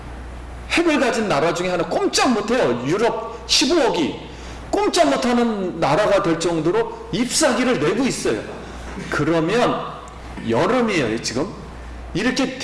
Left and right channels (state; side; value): identical; both; correlation 1.00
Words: 핵을 가진 나라 중에 하나 꼼짝 못해요. 유럽 15억이 꼼짝 못하는 나라가 될 정도로 잎사귀를 내고 있어요. 그러면 여름이에요. 지금 이렇게